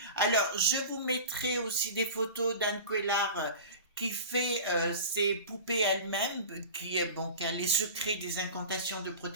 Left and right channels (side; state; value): both; inverted; correlation -0.34